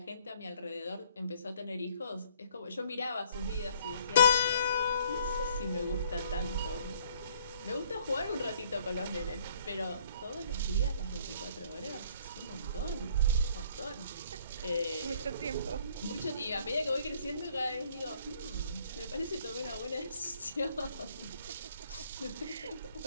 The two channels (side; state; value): both; inverted; correlation -0.61